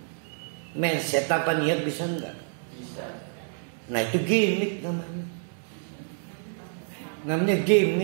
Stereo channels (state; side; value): silent; left; 59 dB below the other